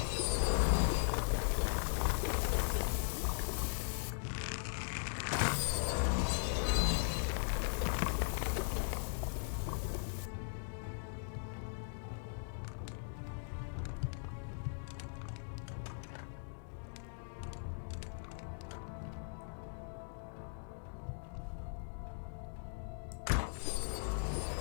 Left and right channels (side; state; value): right; silent; digital silence